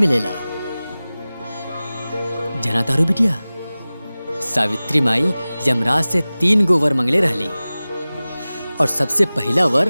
जना तारू बिटिया, सावित्री माई यमराज से 3 गो वर मंगले रहली और सबसे पहला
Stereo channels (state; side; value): inverted; both; correlation -0.98